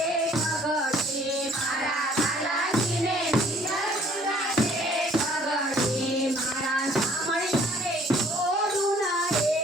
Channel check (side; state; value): both; normal; correlation 0.58